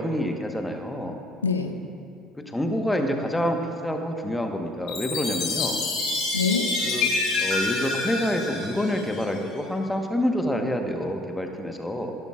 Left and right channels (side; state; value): both; normal; correlation 0.59